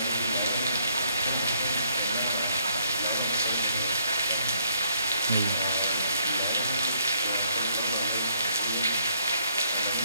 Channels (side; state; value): both; inverted; correlation -0.68